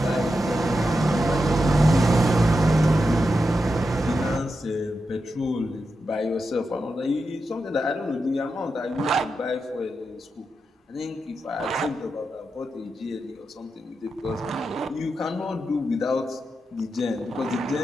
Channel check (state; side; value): normal; both; correlation 0.88